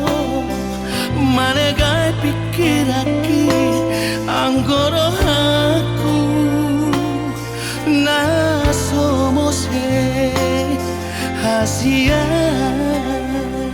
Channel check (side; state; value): both; identical; correlation 1.00